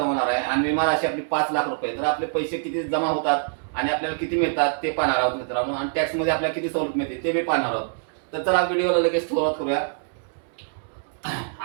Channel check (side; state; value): left; silent; digital silence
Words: होणार आहे आणि विमा राशी आपली 5 लाख रुपये. तर आपले पैसे किती जमा होतात आणि आपल्याला किती मिळतात ते पाहणार आहोत मित्रांनो, आणि टॅक्स मध्ये आपल्याला किती सवलत मिळते ते बी पाहणार आहोत. तर चला व्हिडिओला लगेच सुरुवात करूया.